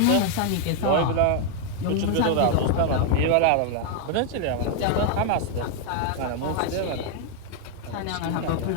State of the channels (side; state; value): both; different; correlation 0.00